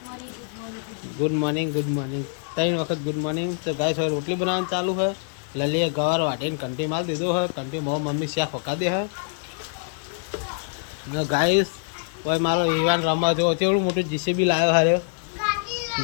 गुड मॉर्निंग 3 वक्त गुड मॉर्निंग। तो गाइस है रोटली बनाना चालू है। लले गवार वाटे कंटी माल दे दो है। कंटी मो मम्मी स्या फका दे है ना गाइस। वही मारो विवान रमा जो चेवड़ू मोटू जीसीबी लायो हारे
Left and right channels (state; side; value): silent; right; digital silence